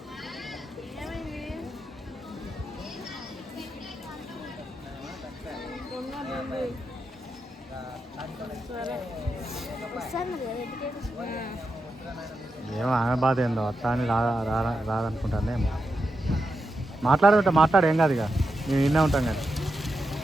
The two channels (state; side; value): normal; both; correlation 0.87